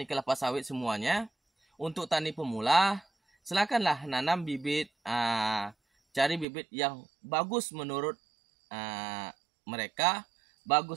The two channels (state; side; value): drops out; left; at 6.5 s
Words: kelapa sawit semuanya, untuk tani pemula silakanlah nanam bibit, cari bibit yang bagus menurut mereka,